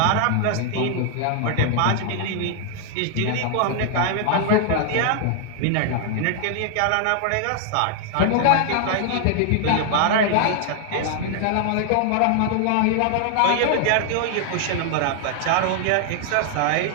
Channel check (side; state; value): both; different; correlation 0.00